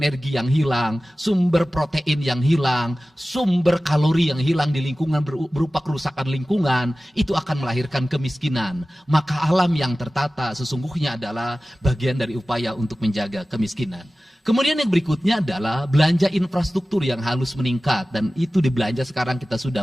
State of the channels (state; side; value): normal; both; correlation 0.96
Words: yang hilang, sumber protein yang hilang, sumber kalori yang hilang di lingkungan berupa kerusakan lingkungan, itu akan melahirkan kemiskinan. Maka alam yang tertata sesungguhnya adalah bagian dari upaya untuk menjaga kemiskinan. Kemudian yang berikutnya adalah belanja infrastruktur yang harus meningkat, dan itu di belanja sekarang kita sudah